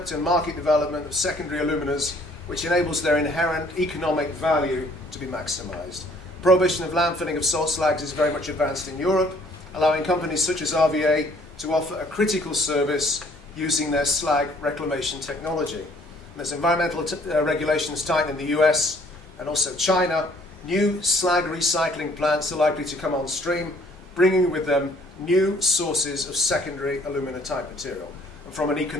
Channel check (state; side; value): normal; both; correlation 0.60